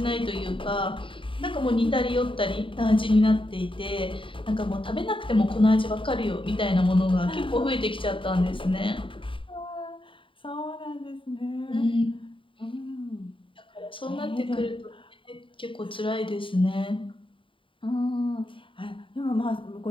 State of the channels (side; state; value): right; late; 0.25 ms